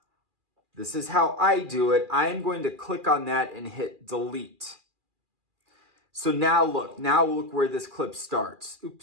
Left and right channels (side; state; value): left; late; 2.4 ms